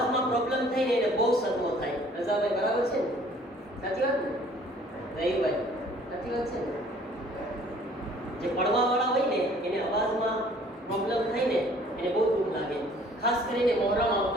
પ્રોબ્લેમ થાય ને, એને બહુ સદમો થાય. રઝાભાઈ બરાબર છે ને? સાચી વાત ને? રહીભાઈ સાચી વાત છે ને? જે પડવા વાળા હોય ને, એને અવાજમાં પ્રોબ્લેમ થાય ને, એને બહુ દુઃખ લાગે. ખાસ કરીને મોહરમ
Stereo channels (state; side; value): normal; both; correlation 0.55